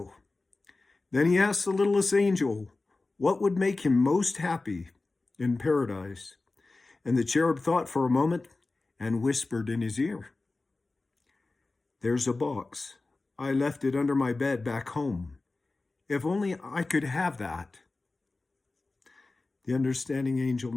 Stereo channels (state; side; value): quieter; right; 3.4 dB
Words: Then he asked the littlest angel what would make him most happy in paradise. And the cherub thought for a moment and whispered in his ear, "There's a box. I left it under my bed back home. If only I could have that." The understanding angel